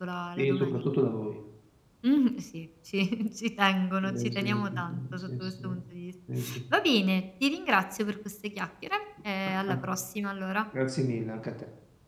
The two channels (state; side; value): identical; both; correlation 1.00